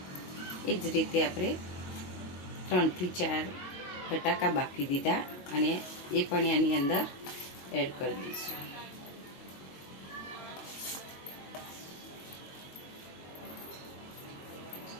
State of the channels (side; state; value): right; late; 22 ms